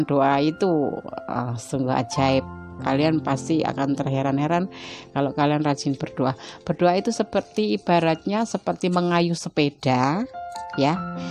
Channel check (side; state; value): both; identical; correlation 1.00